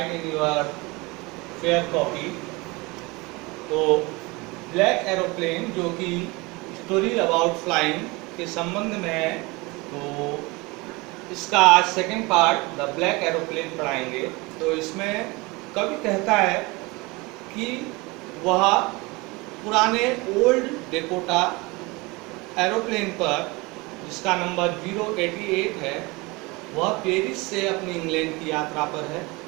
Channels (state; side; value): quieter; left; 24.5 dB